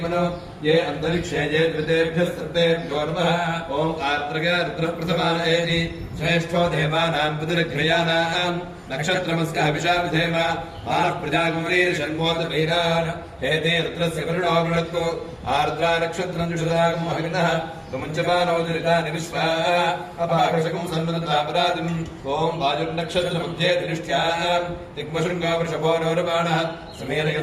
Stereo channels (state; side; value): identical; both; correlation 1.00